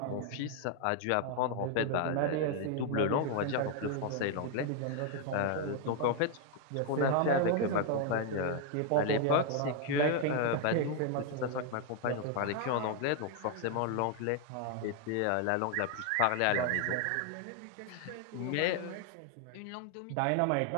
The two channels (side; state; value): both; different; correlation 0.01